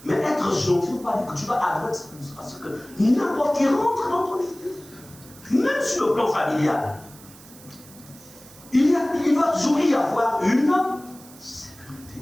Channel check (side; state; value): right; noise; hiss, 21 dB below the sound